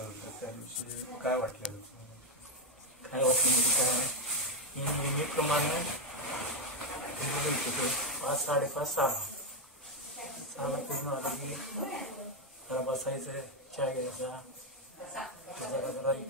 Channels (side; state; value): both; normal; correlation 0.06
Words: होतं त्या दिवशी काय वाटलं? काय वाटलं म्हणजे काय, मी नेहमीप्रमाणे 5-5:30 6ला पूर्ण आलं की जरा बसायचं, चहा घ्यायचा, जरा